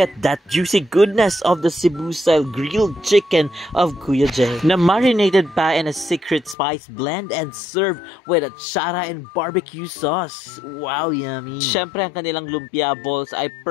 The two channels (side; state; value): right; drops out; at 6.6 s